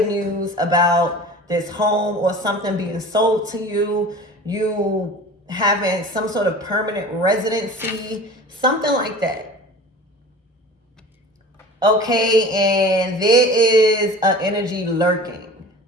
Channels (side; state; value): both; normal; correlation 0.39